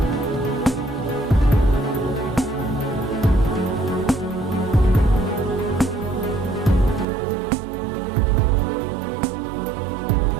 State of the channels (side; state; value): left; drops out; at 7.1 s